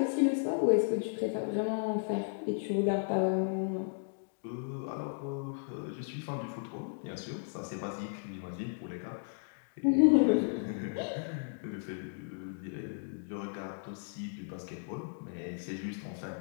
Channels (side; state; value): right; silent; digital silence